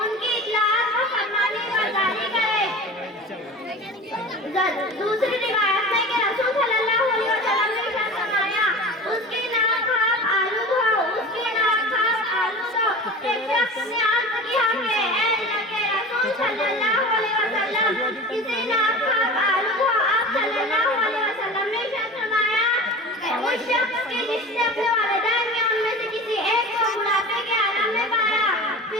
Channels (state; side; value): normal; both; correlation 0.35